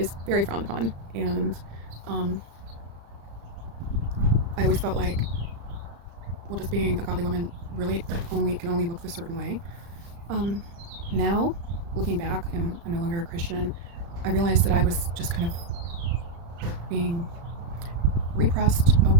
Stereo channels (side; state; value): left; late; 35 ms